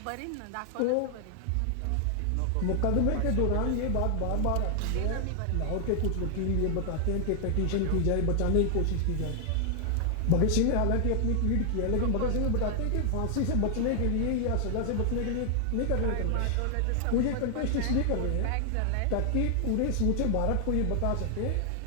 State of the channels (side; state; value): both; different; correlation 0.00